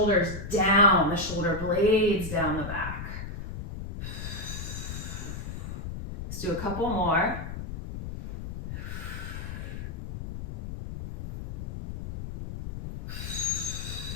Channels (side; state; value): left; noise; rumble, 7 dB below the sound